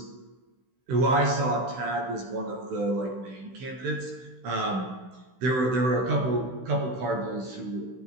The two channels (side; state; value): left; late; 16 ms